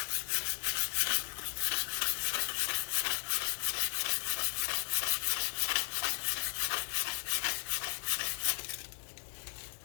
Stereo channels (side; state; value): right; silent; digital silence